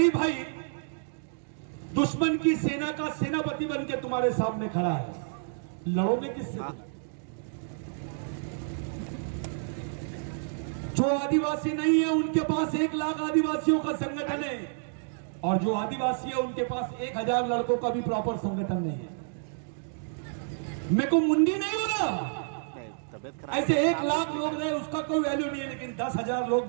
भाई दुश्मन की सेना का सेनापति बन के तुम्हारे सामने खड़ा है, लड़ोगे किससे? हाँ। जो आदिवासी नहीं है उनके पास 1 लाख आदिवासियों का संगठन है, और जो आदिवासी है उनके पास 1000 लड़कों का भी प्रॉपर संगठन नहीं है। मेरे को मुंडी नहीं हो रहा। ऐसे 1 लाख लोग रहे उसका कोई वैल्यू नहीं है, लेकिन 10,000 लोग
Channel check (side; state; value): left; silent; digital silence